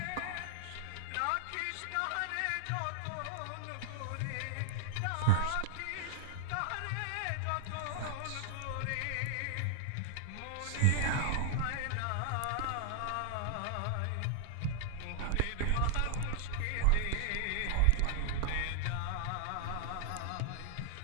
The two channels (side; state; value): both; different; correlation -0.01